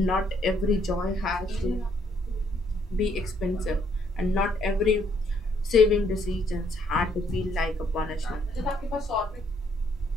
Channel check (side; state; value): both; normal; correlation 0.69